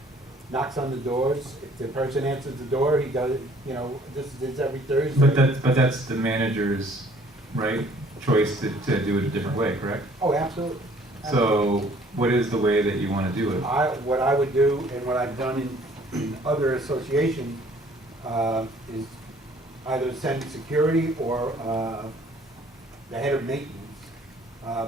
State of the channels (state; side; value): normal; both; correlation 0.58